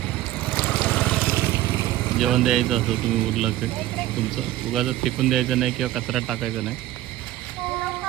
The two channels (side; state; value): left; quieter; 15.0 dB